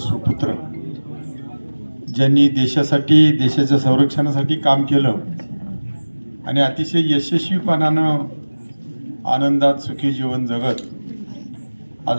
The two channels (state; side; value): inverted; both; correlation -1.00